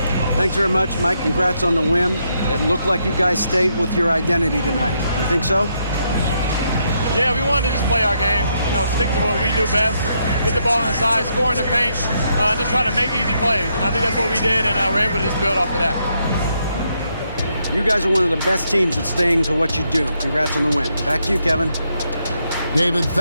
Thanks very much, Mike. Congrats on the win. It looked like you guys stayed with your identity tonight. You think so? Yeah, we wanted to just play our game, you know, stick to what we do best, get the ball inside, score in the paint, just try to make easy plays. And I think that's what we did, and we're able to just build off of that. You guys are one of the best teams at staying to what you do. Congrats on the win. Back to you, Kevin. David,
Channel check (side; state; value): both; inverted; correlation -0.78